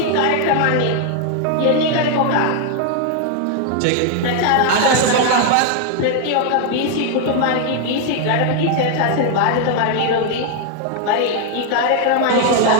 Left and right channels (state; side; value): different; both; correlation 0.00